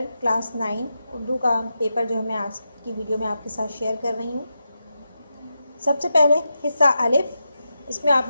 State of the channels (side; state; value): both; inverted; correlation -0.88